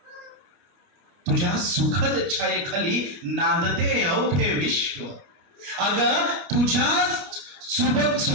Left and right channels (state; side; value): late; left; 29 ms